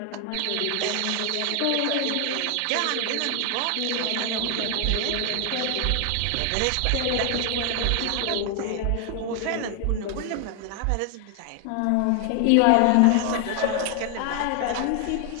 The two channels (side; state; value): both; different; correlation 0.00